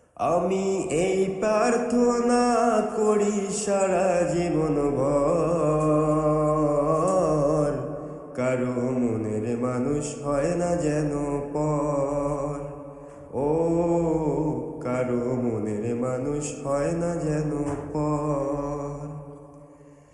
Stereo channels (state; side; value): identical; both; correlation 1.00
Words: আমি এই প্রার্থনা করি সারা জীবন ভর, কারো মনের মানুষ হয় না যেন পর। ও কারো মনের মানুষ হয় না যেন পর।